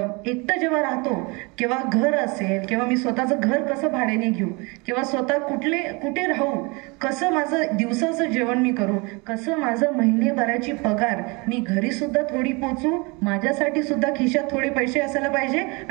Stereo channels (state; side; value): quieter; left; 28.3 dB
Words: एकटं जेव्हा राहतो, किंवा घर असेल, किंवा मी स्वतःचं घर कसं भाड्याने घेऊ, किंवा स्वतः कुठे राहू, कसं माझं दिवसाचं जेवण मी करू, कसं माझं महिनेभराची पगार मी घरी सुद्धा थोडी पोचू, माझ्यासाठी सुद्धा खिशात थोडे पैसे असायला पाहिजे,